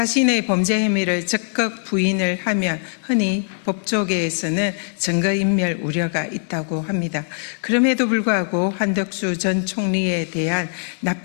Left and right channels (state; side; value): silent; right; digital silence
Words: 범죄 혐의를 적극 부인을 하면 흔히 법조계에서는 증거인멸 우려가 있다고 합니다. 그럼에도 불구하고 한덕수 전 총리에 대한